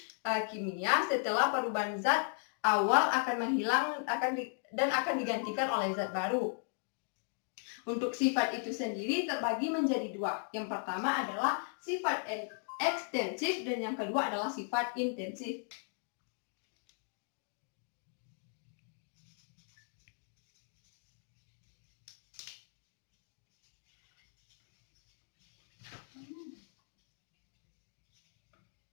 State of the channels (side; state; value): right; silent; 53 dB below the other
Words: kimia setelah perubahan zat awal akan menghilang dan akan digantikan oleh zat baru. Untuk sifat itu sendiri terbagi menjadi dua. Yang pertama adalah sifat ekstensif dan yang kedua adalah sifat intensif.